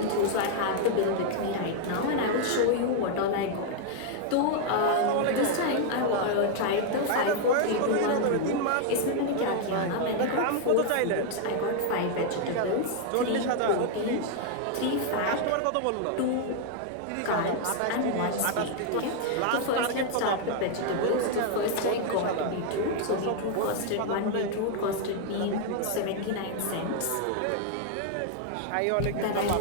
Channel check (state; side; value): different; both; correlation 0.00